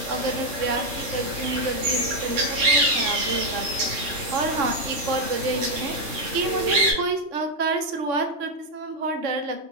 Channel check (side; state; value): left; late; 3.5 ms